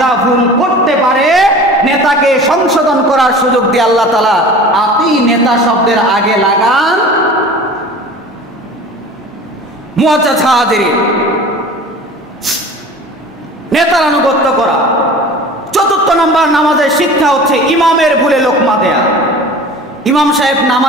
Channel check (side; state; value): both; normal; correlation 0.40